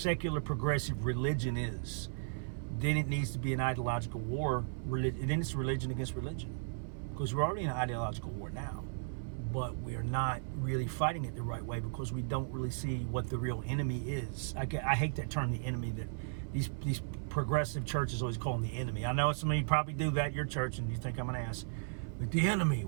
progressive religion is, then it needs to be an ideological war. Then it's religion against religion, because we're already in an ideological war now, but we're not really fighting it the right way because we don't really see what the real enemy is. I hate that term, the enemy, that these progressive churches always call them the enemy. I know some of you probably do that at your church and you think I'm an ass, but the enemy,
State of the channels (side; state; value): left; silent; 54 dB below the other